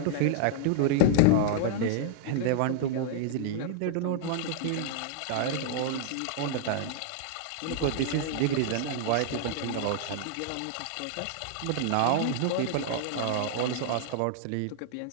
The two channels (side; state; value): both; different; correlation -0.01